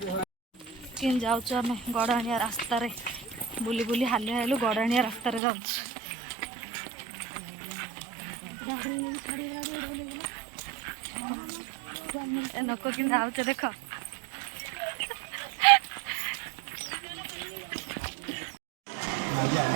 କେମିତି ଯାଉଛୁ ଆମେ ଗଡ଼ାଣିଆ ରାସ୍ତାରେ ବୁଲି ବୁଲି ହାଲିଆ ହେଲୁ ଗଡ଼ାଣିଆ ରାସ୍ତାରେ ଯାଉଛୁ। ଏ ଲୋକ କେମିତି ଯାଉଛେ ଦେଖ।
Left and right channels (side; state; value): left; drops out; at 5.4 s